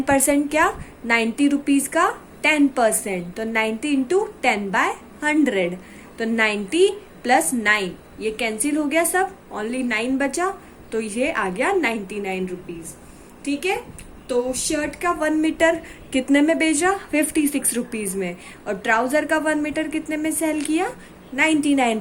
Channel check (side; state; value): both; identical; correlation 1.00